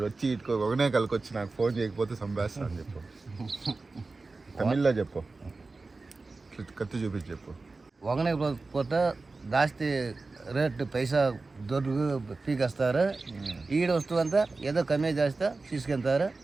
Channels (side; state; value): left; quieter; 3.7 dB